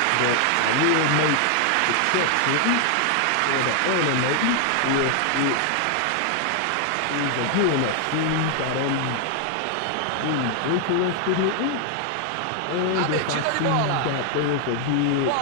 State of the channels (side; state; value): both; different; correlation 0.00